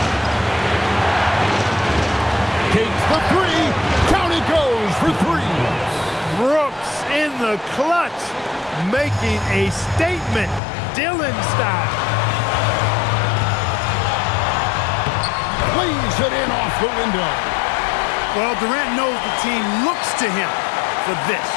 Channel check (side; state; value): right; drops out; at 10.6 s